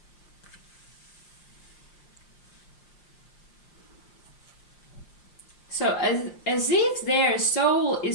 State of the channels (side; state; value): right; late; 5.7 ms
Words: So as if their soul